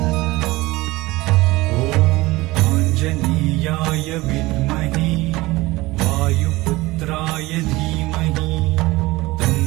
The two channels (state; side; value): quieter; left; 20.3 dB